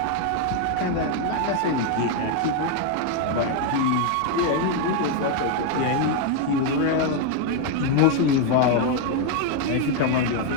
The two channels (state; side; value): different; both; correlation 0.01